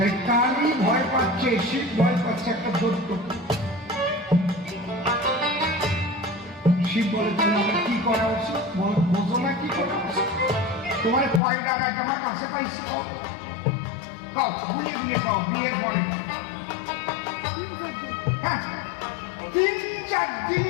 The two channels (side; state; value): right; drops out; at 11.4 s